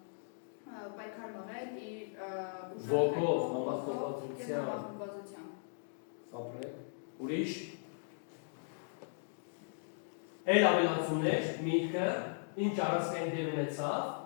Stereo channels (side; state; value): right; silent; digital silence